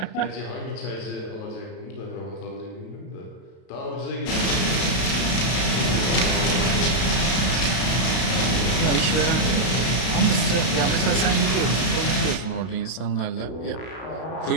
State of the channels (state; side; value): late; right; 32 ms